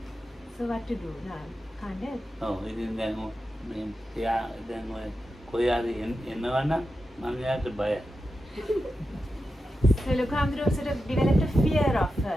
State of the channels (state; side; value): normal; both; correlation 0.90